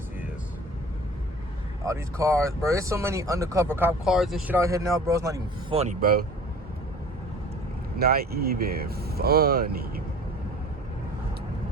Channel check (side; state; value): both; normal; correlation 0.44